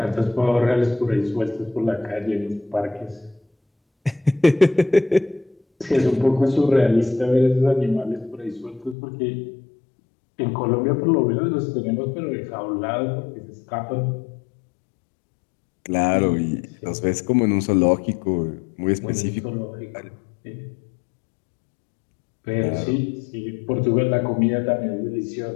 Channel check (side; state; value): right; drops out; at 9.0 s